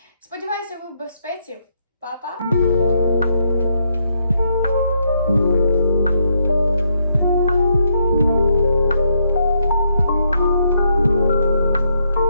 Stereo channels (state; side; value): inverted; both; correlation -0.76